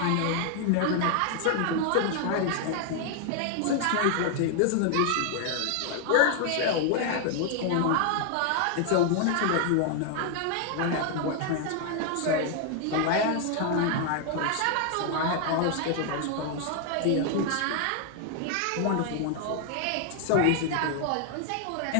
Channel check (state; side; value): different; both; correlation 0.00